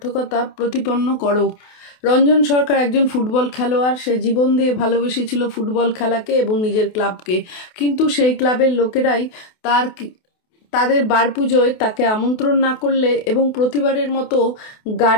প্রতিপন্ন করো। রঞ্জন সরকার একজন ফুটবল খেলোয়াড়। সে জীবন দিয়ে ভালোবেসেছিল ফুটবল খেলাকে এবং নিজের ক্লাবকে, কিন্তু সেই ক্লাবের লোকেরাই তাদের বার পুজোয় তাকে আমন্ত্রণ না করলে এবং প্রতিবারের মতো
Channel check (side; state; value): right; late; 28 ms